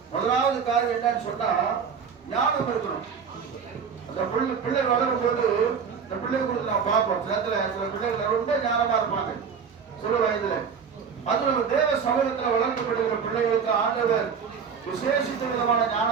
முதலாவது காரியம் என்னன்னு சொன்னா ஞானம் இருக்கணும். அந்த பிள்ளை வளரும் போது இந்த பிள்ளை குறித்து நான் பார்ப்போம். சில பிள்ளைகள் ரொம்ப ஞானமா இருப்பாங்க சிறு வயதுல. அது நம்ம தேவ சமூகத்துல வளர்க்கப்படுகிற பிள்ளைகளுக்கு ஆண்டவர் விசேஷித்த விதமான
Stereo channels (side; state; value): left; quieter; 6.4 dB